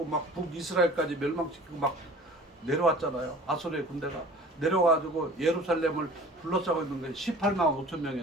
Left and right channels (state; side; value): normal; both; correlation 0.45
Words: 막 북이스라엘까지 멸망시키고 막 내려왔잖아요. 아수르의 군대가 내려와가지고 예루살렘을 둘러싸고 있는 게 18만 5천